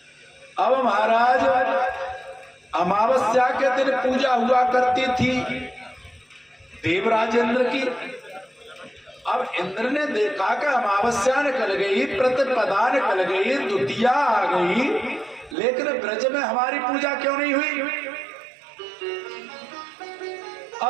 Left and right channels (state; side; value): drops out; left; at 15.6 s